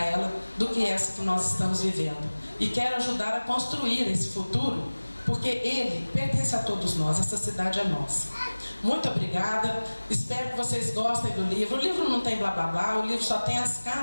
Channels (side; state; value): both; inverted; correlation -1.00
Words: do que essa que nós estamos vivendo. E quero ajudar a construir esse futuro, porque ele pertence a todos nós, essa cidade é nossa. Muito obrigada, espero que vocês gostem do livro. O livro não tem blá blá blá, o livro só tem as